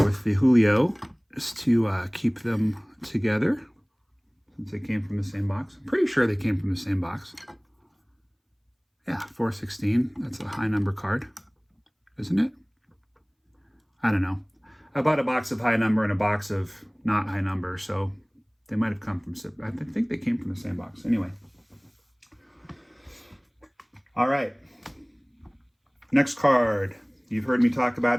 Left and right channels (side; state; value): both; identical; correlation 1.00